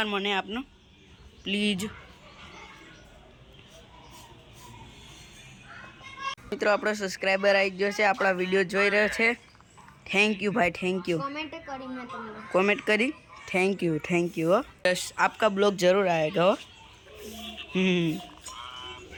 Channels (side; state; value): both; identical; correlation 1.00